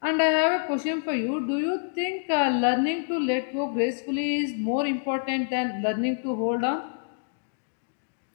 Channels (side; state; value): right; silent; digital silence